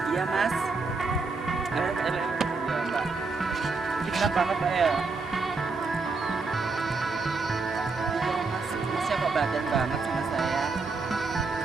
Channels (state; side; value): quieter; left; 4.1 dB